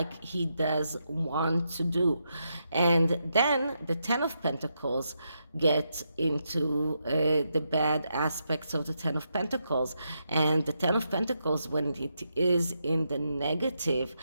he does want to do. And then the 10 of Pentacles get into the bad aspects of the 10 of Pentacles. And the 10 of Pentacles, when it is in the negative,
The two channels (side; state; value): both; inverted; correlation -0.83